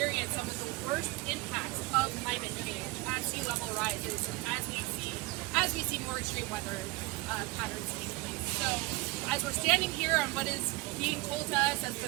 some of the worst impacts of climate change as sea level rises and as we see more extreme weather patterns take place. So as we're standing here on what is being told to us as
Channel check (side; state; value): left; quieter; 22.5 dB